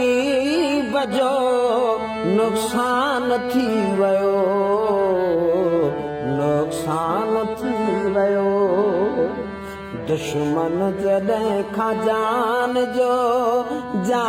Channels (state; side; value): identical; both; correlation 1.00